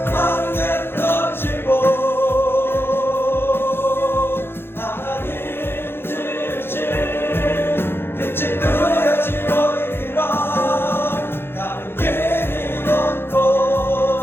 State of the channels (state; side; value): late; right; 0.11 ms